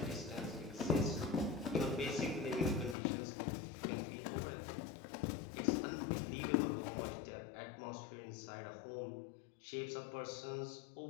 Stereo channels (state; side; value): drops out; right; at 3.0 s